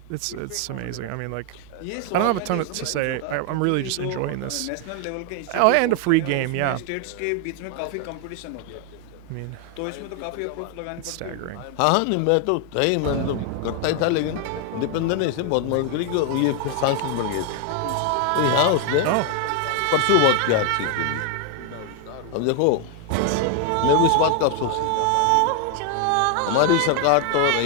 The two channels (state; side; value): different; both; correlation 0.00